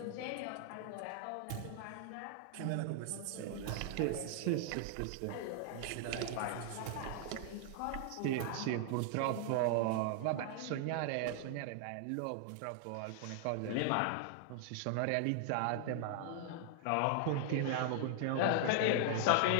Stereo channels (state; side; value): different; both; correlation -0.01